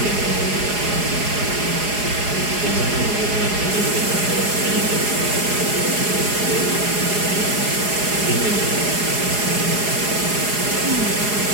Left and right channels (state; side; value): late; left; 4.8 ms